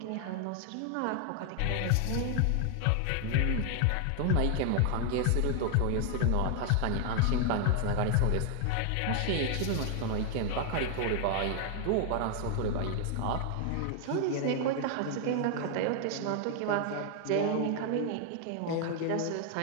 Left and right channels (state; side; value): different; both; correlation 0.00